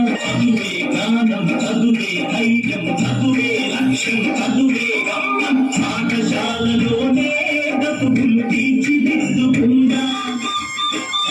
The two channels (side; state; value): both; identical; correlation 1.00